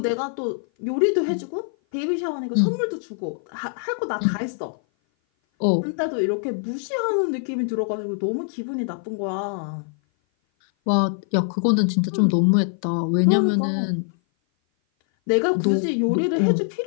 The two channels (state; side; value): silent; right; 57 dB below the other